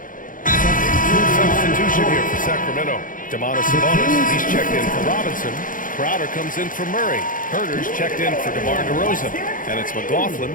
Substitution here for Sacramento. Demonis Sabonis, he's checked in for Robinson. Crowder comes in for Murray. Herter's checked in for DeMar DeRozan. And it's McLaughlin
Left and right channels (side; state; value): right; late; 0.39 ms